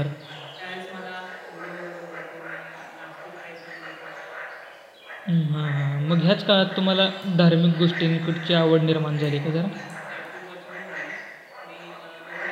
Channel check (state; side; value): identical; both; correlation 1.00